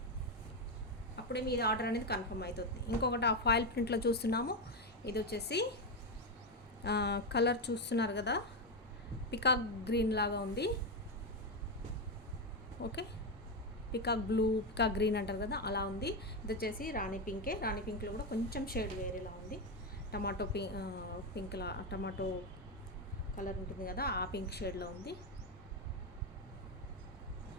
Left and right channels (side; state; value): both; normal; correlation 0.09